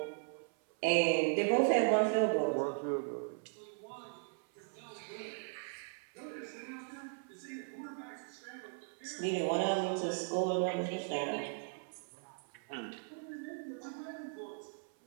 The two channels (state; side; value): silent; left; 53 dB below the other